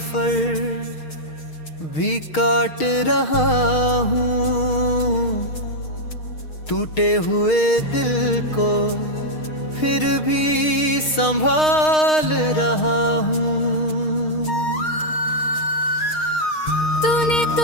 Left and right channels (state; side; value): late; right; 6.5 ms